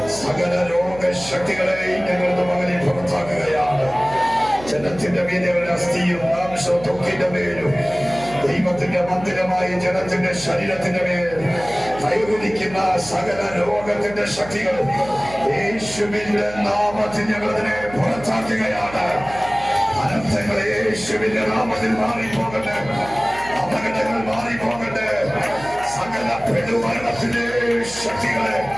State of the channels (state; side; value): noise; right; hum, 16 dB below the sound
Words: സകല രോഗശക്തികളെയും ഞങ്ങളുടെ മകനെ പുറത്താക്കുകയാണ്. ജനത്തിന്റെ മീനുകളുടെ അസ്ഥിയും മാംസവും ത്വക്കിന്റെ മേലും ദൈവത്തിന്റെ മന്ദിരമായ ജനത്തിന്റെ ശരീരത്തിന്റെ മേൽ കൈവരിക്കുന്ന സകല രോഗത്തിന്റെ ശക്തികൾ യേശുവിന്റെ നാമത്തിൽ ഞങ്ങളതിനെ പുറത്താക്കുകയാണ്. അനർത്ഥങ്ങൾ യേശുവിന്റെ നാമത്തിൽ മാറിപ്പോകട്ടെ, അപകടങ്ങൾ മാറിപ്പോകട്ടെ, സകല പെടുമരണത്തിന്റെ ശക്തികളെ